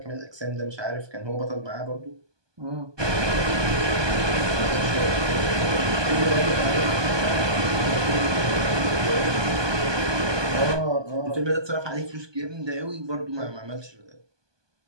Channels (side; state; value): left; late; 1.2 ms